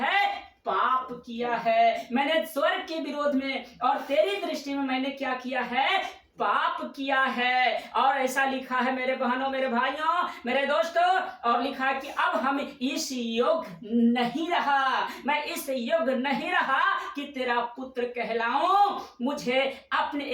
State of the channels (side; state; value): both; identical; correlation 1.00